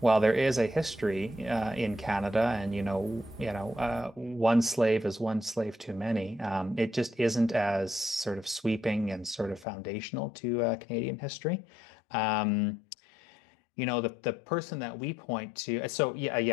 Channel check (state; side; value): drops out; right; at 9.7 s